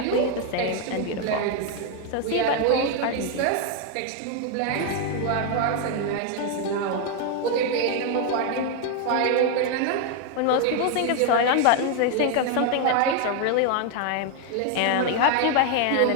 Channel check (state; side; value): different; both; correlation 0.01